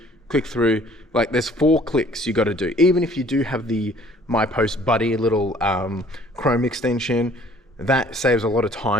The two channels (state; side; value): normal; both; correlation 0.56